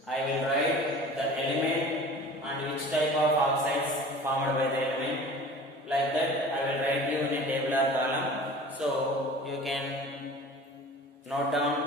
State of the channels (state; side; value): normal; both; correlation 0.41